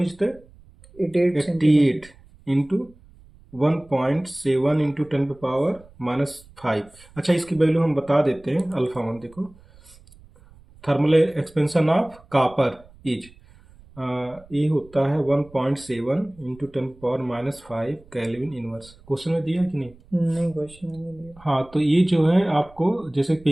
is the 88 into 1.7 into 10 पे पावर -5। अच्छा, इसकी वैल्यू हम बता देते हैं। अल्फा 1 देखो, thermal expansion of copper is, ये होता है 1.7 into 10 power -5 kelvin inverse. Question में दिया है कि नहीं? नहीं, क्वेश्चन में नहीं दिया। हाँ, तो ये जो है आपको जैसे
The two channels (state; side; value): noise; right; rumble, 25 dB below the sound